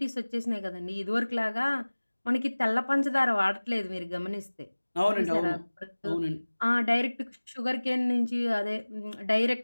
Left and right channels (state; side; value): inverted; both; correlation -1.00